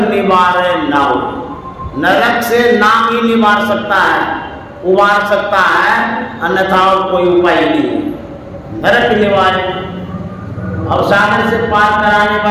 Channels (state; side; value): identical; both; correlation 1.00